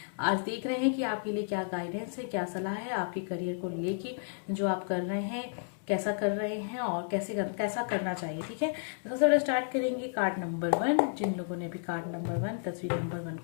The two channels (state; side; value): silent; right; digital silence